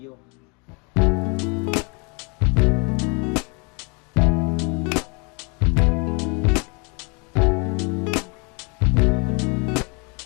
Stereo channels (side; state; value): right; quieter; 32.3 dB